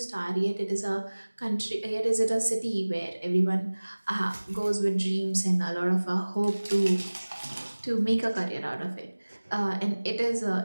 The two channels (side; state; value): both; inverted; correlation -1.00